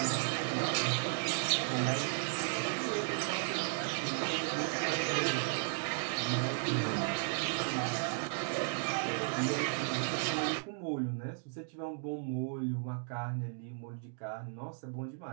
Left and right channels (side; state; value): left; silent; digital silence